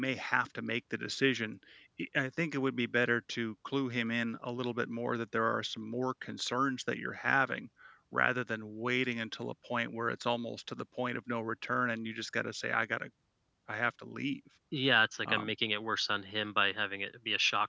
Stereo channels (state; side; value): identical; both; correlation 1.00